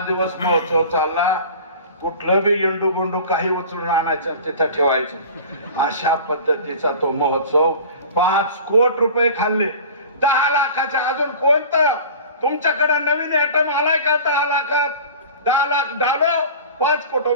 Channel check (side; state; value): both; inverted; correlation -0.39